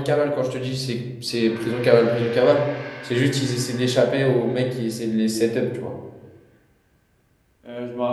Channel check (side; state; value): both; identical; correlation 1.00